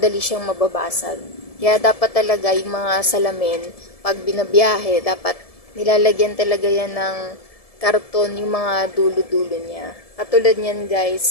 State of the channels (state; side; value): late; right; 1.7 ms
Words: siyang mababasag. Kaya dapat talaga yung mga salamin, pag binabiyahe, dapat nilalagyan talaga yan ng karton yung mga dulo-dulo niya. Katulad niyan